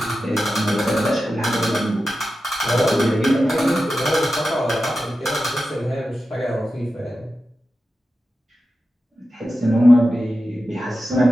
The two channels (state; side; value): normal; both; correlation 0.92